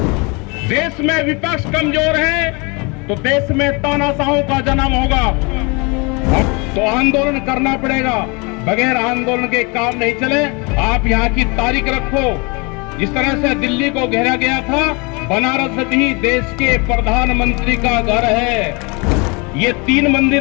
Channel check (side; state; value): right; quieter; 29.7 dB